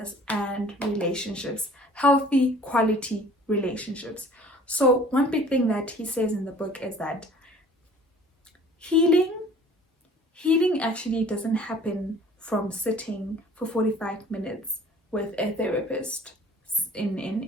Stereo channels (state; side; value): normal; both; correlation 0.50